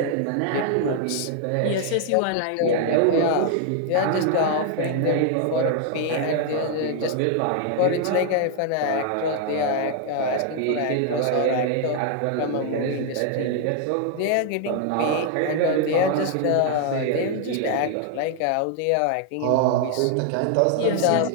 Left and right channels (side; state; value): both; different; correlation 0.00